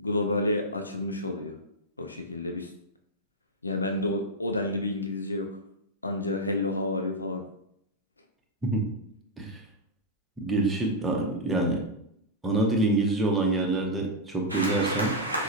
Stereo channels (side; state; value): both; normal; correlation -0.04